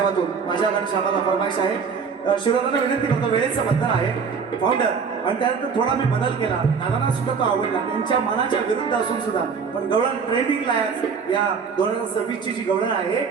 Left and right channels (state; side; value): quieter; left; 5.8 dB